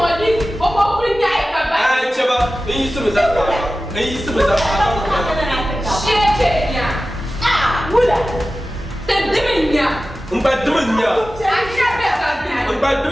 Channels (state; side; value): normal; both; correlation 0.95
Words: Bobo Nyai Baba. Ah, Chaba, you used to be that. You used to be that. Shia, ah, Wula. The Dimia. But Dimia. But